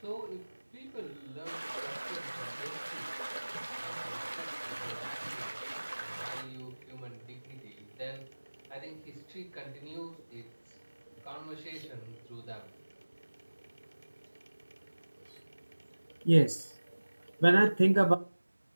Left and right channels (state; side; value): inverted; both; correlation -1.00